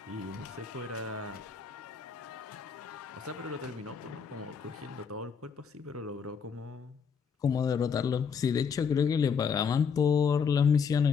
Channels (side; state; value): right; quieter; 6.3 dB